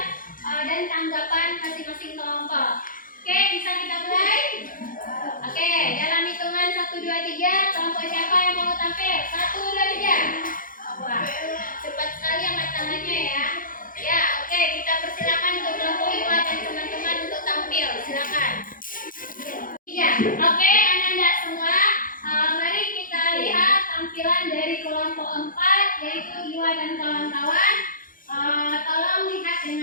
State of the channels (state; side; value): late; right; 0.40 ms